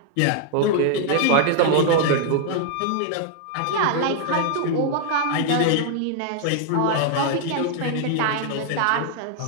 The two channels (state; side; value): different; both; correlation 0.00